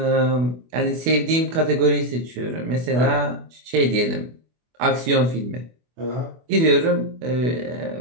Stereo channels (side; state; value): left; late; 24 ms